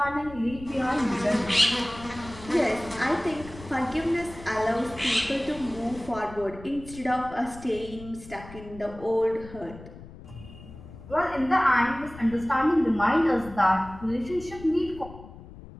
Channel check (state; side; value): noise; left; rumble, 16 dB below the sound